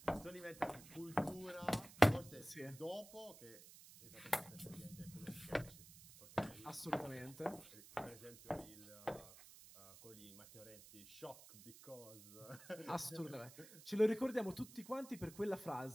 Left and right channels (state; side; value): noise; right; hiss, 17 dB below the sound